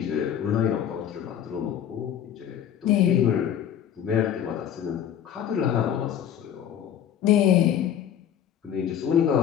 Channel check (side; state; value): right; quieter; 9.7 dB